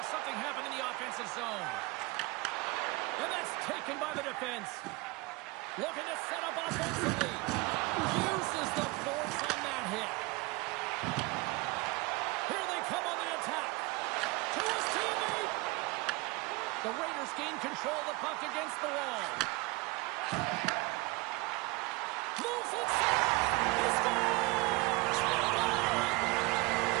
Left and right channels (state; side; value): quieter; left; 23.9 dB